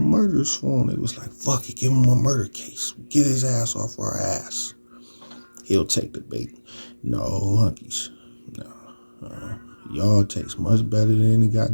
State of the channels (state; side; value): inverted; both; correlation -1.00